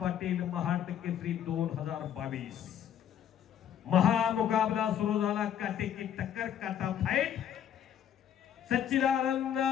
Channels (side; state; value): right; quieter; 9.8 dB